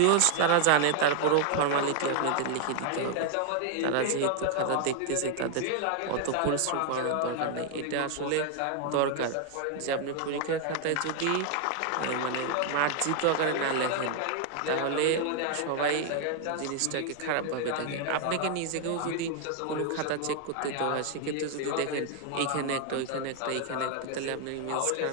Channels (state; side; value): different; both; correlation 0.00